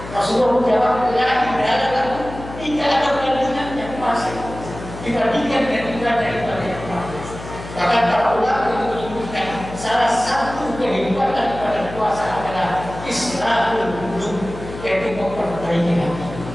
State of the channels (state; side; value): noise; left; hum, 12 dB below the sound